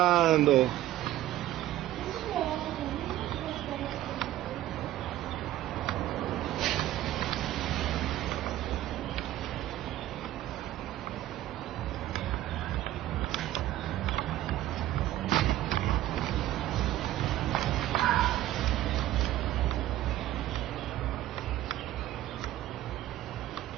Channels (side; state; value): left; quieter; 14.1 dB